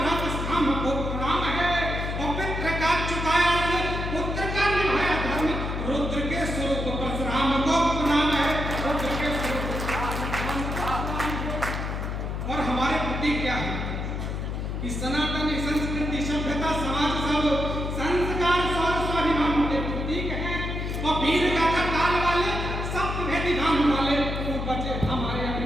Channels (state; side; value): noise; left; hum, 3 dB below the sound